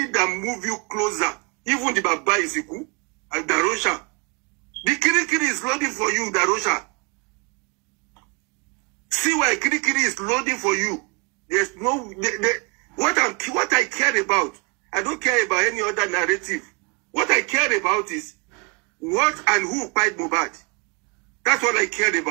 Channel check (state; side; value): quieter; left; 32.5 dB